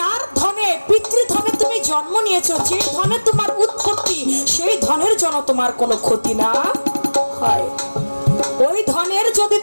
ধনে পিতৃধনে তুমি জন্ম নিয়েছো, যে ধনে তোমার উৎপত্তি, সেই ধনের জন্য তোমার কোনো ক্ষতি না হয়। ওই ধনের যদি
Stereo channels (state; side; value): inverted; both; correlation -1.00